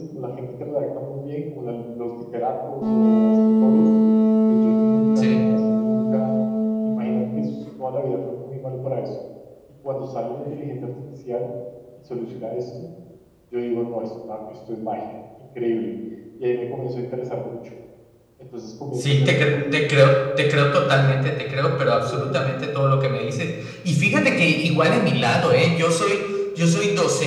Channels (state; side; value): identical; both; correlation 1.00